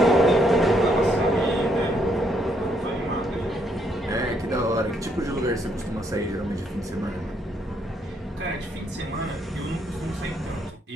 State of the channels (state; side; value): normal; both; correlation 0.72